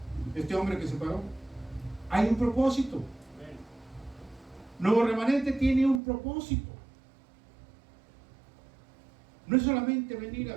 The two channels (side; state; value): left; drops out; at 6.0 s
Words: este hombre que se paró, hay un propósito. Nuevo Remanente tiene un propósito. No es solamente venir